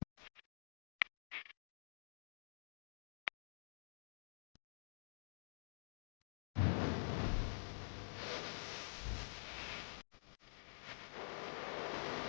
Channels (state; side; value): silent; right; digital silence